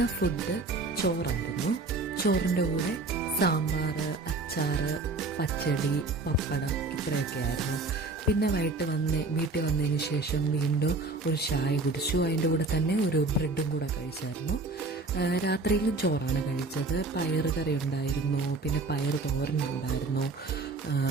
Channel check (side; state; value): left; quieter; 3.4 dB